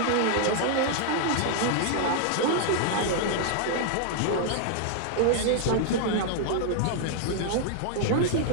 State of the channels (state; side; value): different; both; correlation 0.00